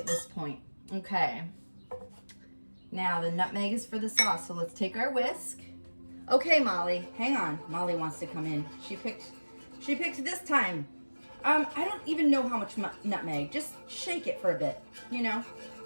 this point. Okay. Now the nutmeg is for the sauce, so let's take our whisk. Okay, Molly, hang on. Molly wants to come in. She picked this time. I don't even know how much nutmeg. Just shake it for a bit, you know.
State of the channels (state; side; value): inverted; both; correlation -1.00